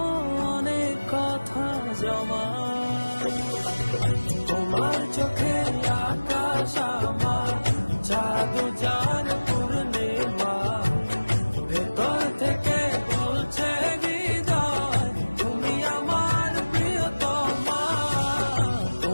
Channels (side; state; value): both; inverted; correlation -1.00